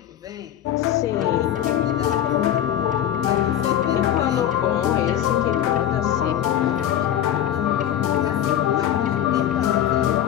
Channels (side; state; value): right; quieter; 10.9 dB